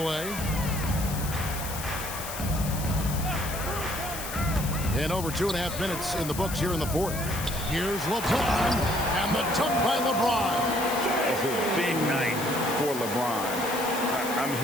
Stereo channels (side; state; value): left; noise; hiss, 8 dB below the sound